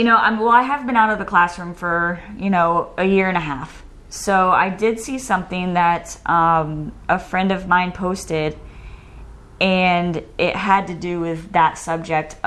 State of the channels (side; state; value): both; identical; correlation 1.00